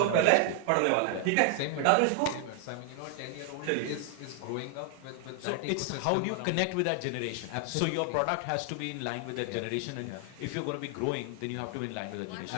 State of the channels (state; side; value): different; both; correlation 0.00